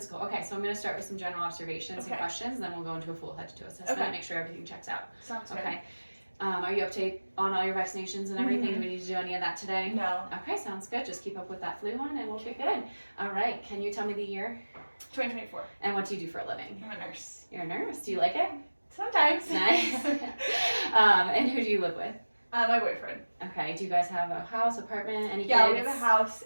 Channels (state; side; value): inverted; both; correlation -1.00